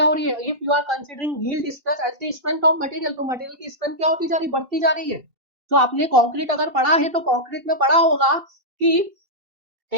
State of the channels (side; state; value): left; late; 2.7 ms